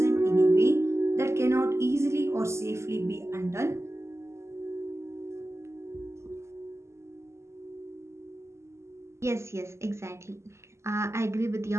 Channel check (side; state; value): left; late; 0.13 ms